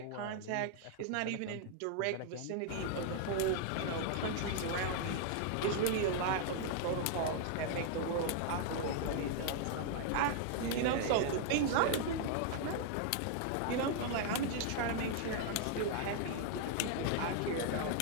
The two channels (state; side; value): different; both; correlation 0.00